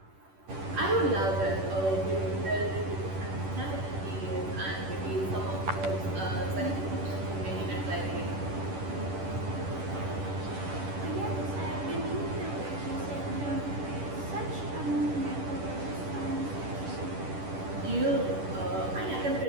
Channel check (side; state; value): left; late; 10 ms